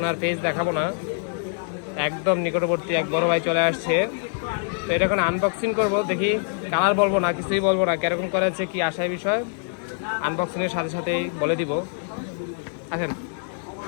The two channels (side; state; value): right; silent; digital silence